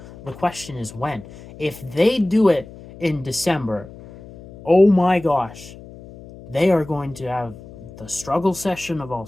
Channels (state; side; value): noise; left; hum, 18 dB below the sound